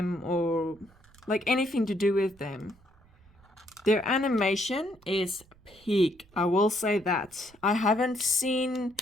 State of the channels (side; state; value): right; noise; rumble, 28 dB below the sound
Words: or like anything to do with them? Their animation is peak, I will say that. I haven't seen